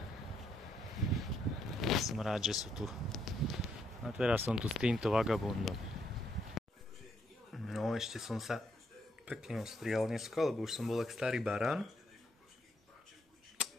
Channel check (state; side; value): normal; both; correlation 0.74